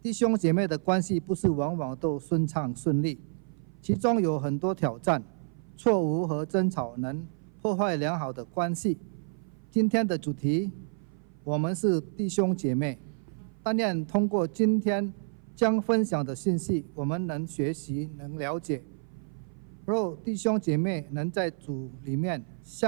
弟兄姐妹的关系不是往往都顺畅顺利，其中有很多挑战、错误和争吵能破坏良好的关系。今天的主题，我们是弟兄姐妹。但愿通过今天将分享的信息，我们能学习、能了解。若弟兄姐妹能在主里面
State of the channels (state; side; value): silent; left; 55 dB below the other